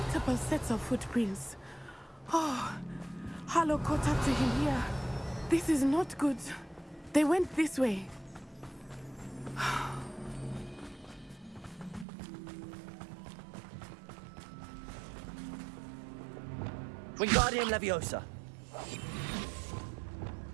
sets of footprints. Oh, Harlow caught up to him here. This is not good. They went this way. Wingardium Leviosa!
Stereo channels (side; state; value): left; drops out; at 12.1 s